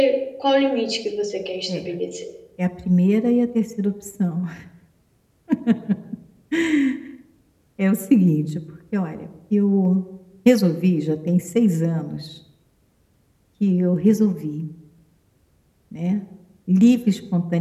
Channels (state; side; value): identical; both; correlation 1.00